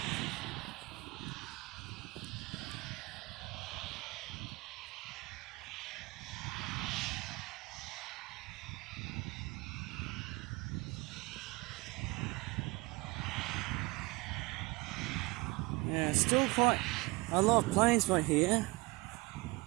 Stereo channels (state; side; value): quieter; left; 24.5 dB